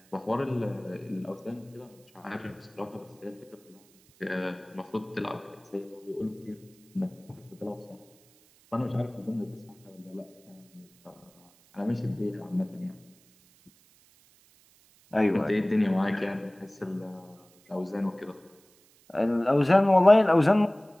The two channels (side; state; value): right; noise; hiss, 30 dB below the sound